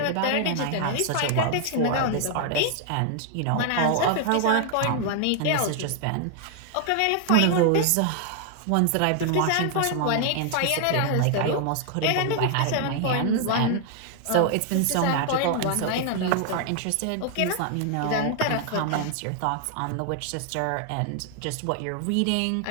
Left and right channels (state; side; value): different; both; correlation 0.00